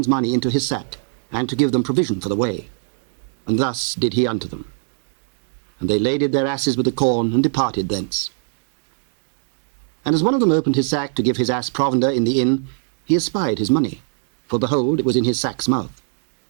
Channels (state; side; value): silent; left; digital silence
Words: money into his sack, and to give them provision for the way. And thus did he unto them. And they laded their asses with the corn, and departed thence. And as one of them opened his sack to give his ass provender in the inn, he espied his money, for behold, it was in his sack's mouth.